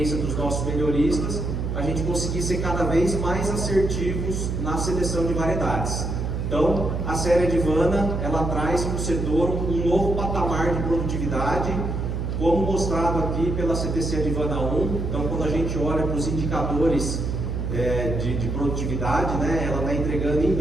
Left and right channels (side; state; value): right; noise; hum, 2 dB below the sound